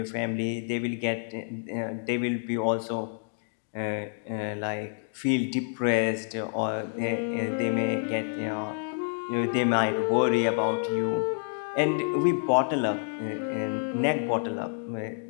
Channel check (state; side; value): silent; right; 59 dB below the other